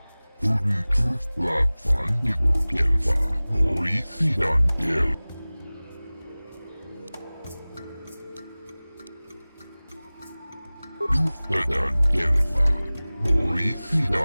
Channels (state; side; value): inverted; both; correlation -0.99